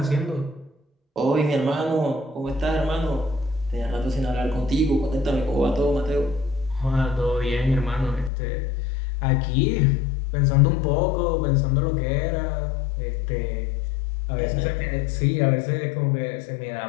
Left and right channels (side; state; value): right; drops out; at 8.3 s